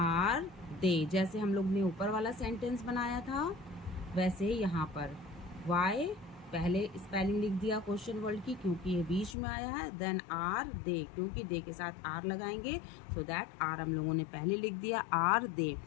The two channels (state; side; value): drops out; right; at 9.3 s